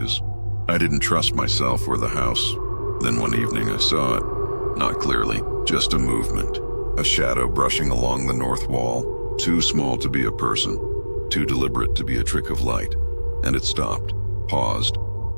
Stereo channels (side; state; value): both; inverted; correlation -1.00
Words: I didn't trust myself or the house. Then one evening I saw it, not clearly, just a movement, a shadow brushing along the north wall, too small to be a person. too deliberate to be a trick of light, and it stopped, paused,